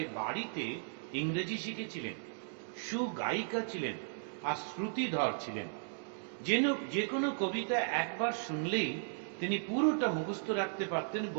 বাড়িতে ইংরেজি শিখেছিলেন, সুগায়িকা ছিলেন আর শ্রুতিধর ছিলেন। যে কোনো কবিতা একবার শুনলেই তিনি পুরোটা মুখস্থ রাখতে পারতেন,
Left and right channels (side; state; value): left; silent; digital silence